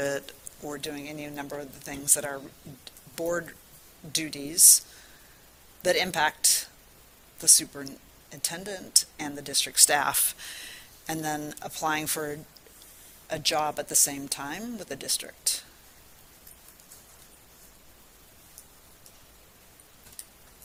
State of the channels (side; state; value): both; identical; correlation 1.00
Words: or doing any number of the things that are board duties that impact the superintendent and the district staff, and then applying for a job at the same time with the district.